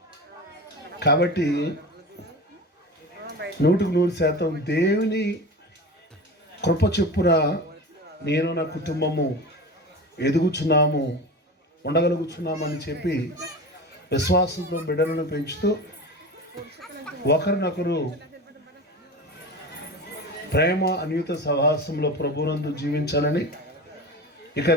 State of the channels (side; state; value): both; normal; correlation 0.30